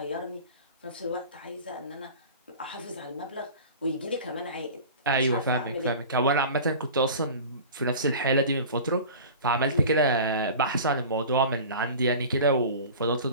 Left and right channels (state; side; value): inverted; both; correlation -0.38